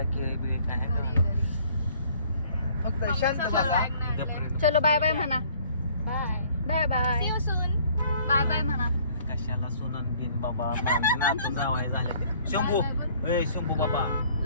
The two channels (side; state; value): both; inverted; correlation -0.57